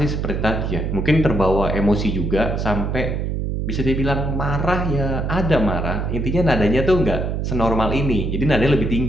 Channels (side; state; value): right; noise; hum, 1 dB below the sound